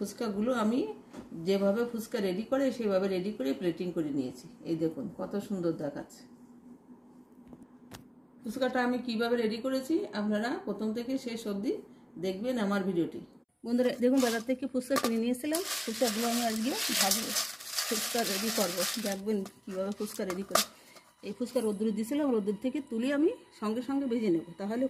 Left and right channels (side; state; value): both; identical; correlation 1.00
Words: আমি যেভাবে ফুচকা রেডি করে সেভাবে রেডি করে প্লেটিং করে নিয়েছি। এই দেখুন কত সুন্দর দেখাচ্ছে। ফুচকাটা আমি কিভাবে রেডি করেছি আপনারা প্রথম থেকে শেষ অবধি দেখবেন আমার ভিডিওটি। বন্ধুরা দেখুন, বাজার থেকে ফুচকা কিনে নিয়েছিলাম। ফুচকাগুলো আমি আজকে ভাজবো, ফুচকা রেডি করবো। দেখবেন কীভাবে ফুচকা রেডি করে। এই ফুচকা রোদ্দুরে দিয়েছিলাম, রোদ্দুর থেকে তুলে আমি সঙ্গে সঙ্গে ভেজে নেব, তাহলে